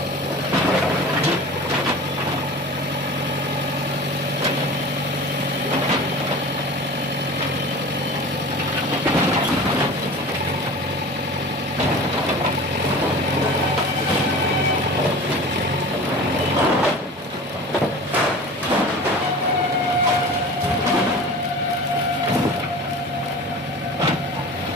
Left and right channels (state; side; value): normal; both; correlation 0.37